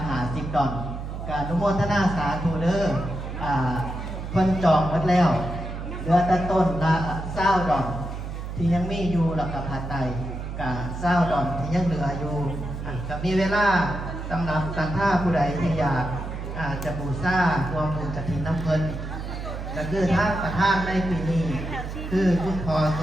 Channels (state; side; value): noise; right; hum, 7 dB below the sound